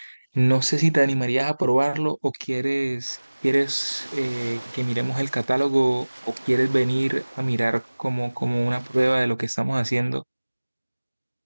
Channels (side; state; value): both; inverted; correlation -1.00